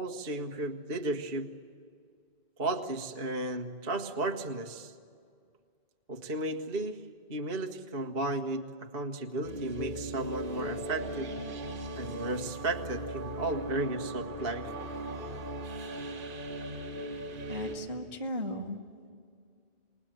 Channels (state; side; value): late; left; 2.6 ms